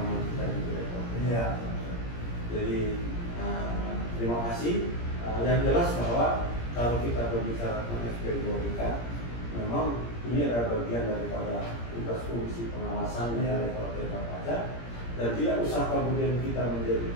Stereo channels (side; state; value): right; late; 17 ms